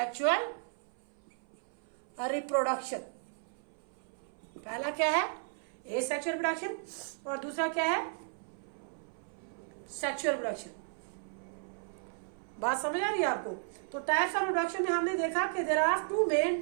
reproduction। पहला क्या है asexual reproduction और दूसरा क्या है sexual reproduction। बात समझ आ रही है आपको। तो टाइप्स ऑफ रिप्रोडक्शन में हमने देखा कि there are two main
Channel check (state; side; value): silent; left; 55 dB below the other